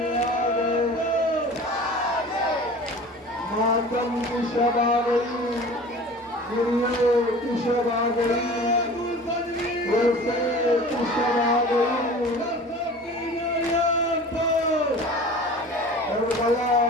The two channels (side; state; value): both; normal; correlation 0.41